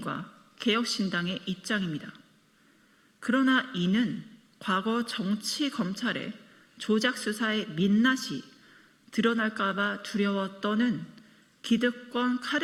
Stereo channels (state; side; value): identical; both; correlation 1.00